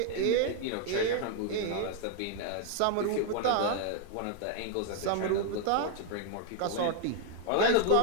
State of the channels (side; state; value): both; different; correlation 0.00